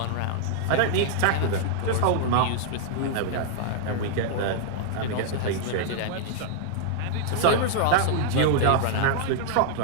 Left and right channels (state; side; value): different; both; correlation -0.01